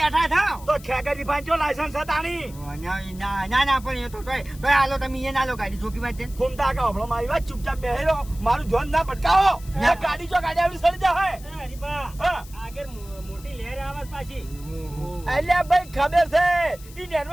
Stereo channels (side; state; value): left; noise; hiss, 20 dB below the sound